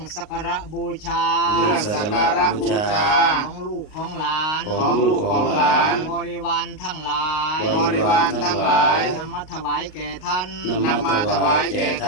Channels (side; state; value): right; late; 38 ms